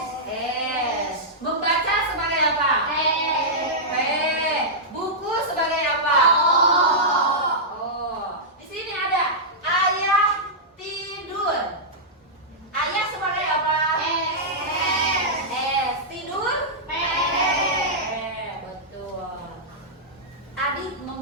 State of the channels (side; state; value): both; normal; correlation -0.11